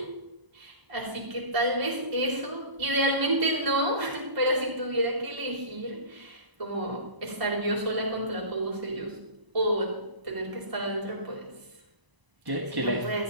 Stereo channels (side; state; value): left; late; 1.0 ms